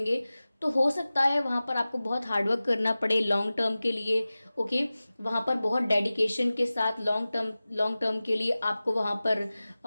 तो हो सकता है वहाँ पर आपको बहुत हार्डवर्क करना पड़े लॉन्ग टर्म के लिए। ओके, वहाँ पर बहुत डेडिकेशन के साथ लॉन्ग टर्म के लिए आपको वहाँ पर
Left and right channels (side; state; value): both; inverted; correlation -0.97